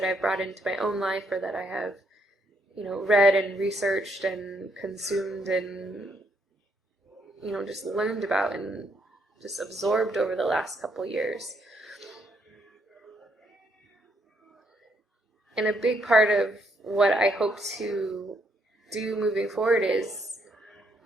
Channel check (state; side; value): normal; both; correlation 0.73